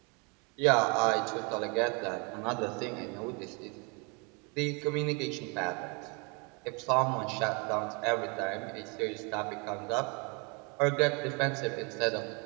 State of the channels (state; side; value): quieter; left; 32.0 dB